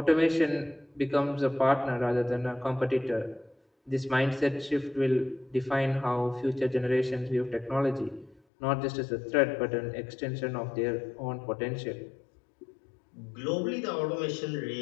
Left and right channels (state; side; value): drops out; right; at 8.4 s